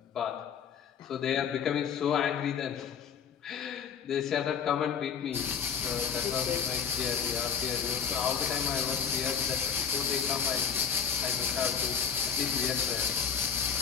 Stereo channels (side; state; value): right; quieter; 7.2 dB